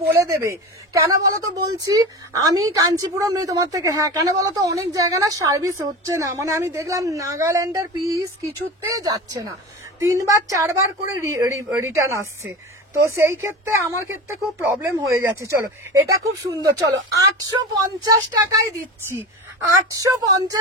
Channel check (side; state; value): both; normal; correlation 0.29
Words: বলে দেবে। কেন বলো তো বলছি, আমি কাঞ্চিপুরম নেই তোমার থেকে। হ্যাঁ কেন বলো তো, অনেক জায়গা না সার্ভিস হচ্ছে না, মানে আমি দেখলাম নাগাল্যান্ডের পিস কিছুতে যাচ্ছে না, 3 বার 4 বার করে রিটার্ন আসছে। তো সেই ক্ষেত্রে আমার ক্ষেত্রে খুব প্রবলেম হয়ে যাচ্ছে। চলো এটা খুব সুন্দর। চলো 850 টাকায় দিচ্ছি।